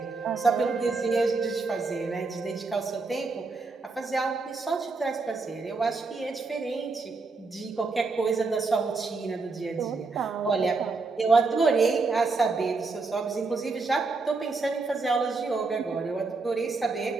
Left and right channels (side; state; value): left; quieter; 4.0 dB